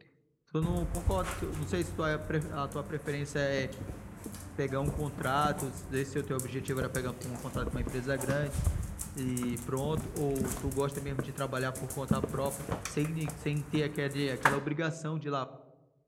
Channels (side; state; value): both; identical; correlation 1.00